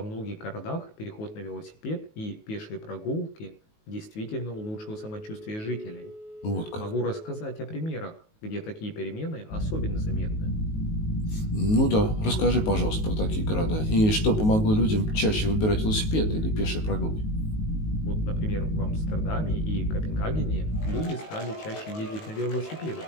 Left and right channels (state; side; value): late; right; 19 ms